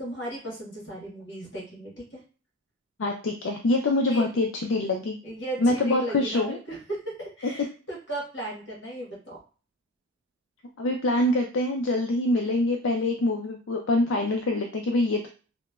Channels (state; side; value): normal; both; correlation 0.29